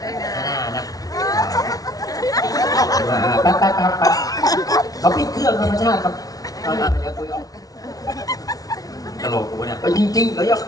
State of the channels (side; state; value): right; late; 0.18 ms